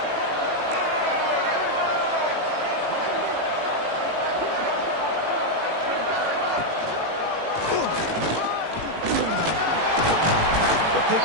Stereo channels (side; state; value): left; late; 18 ms